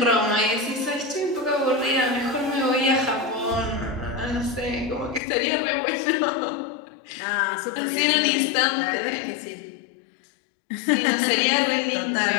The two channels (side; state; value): right; drops out; at 5.2 s